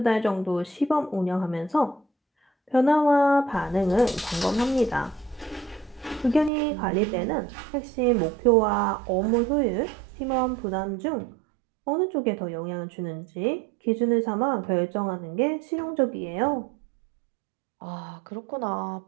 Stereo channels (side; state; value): left; drops out; at 6.5 s